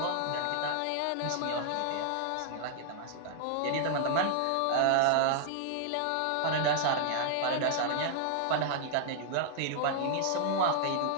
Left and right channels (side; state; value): both; different; correlation 0.00